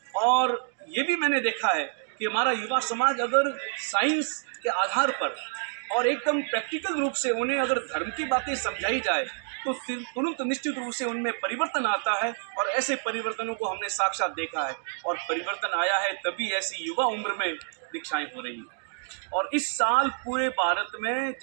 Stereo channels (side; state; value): left; silent; digital silence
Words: और ये भी मैंने देखा है कि हमारा युवा समाज अगर साइंस के आधार पर और एकदम प्रैक्टिकल रूप से उन्हें अगर धर्म की बातें समझाई जाए तो तुरंत निश्चित रूप से उनमें परिवर्तन आता है। और ऐसे परिवर्तनों को हमने साक्षात देखा है और परिवर्तन आया है तभी ऐसी युवा उम्र में दीक्षाएं हो रही हैं। और इस साल पूरे भारत में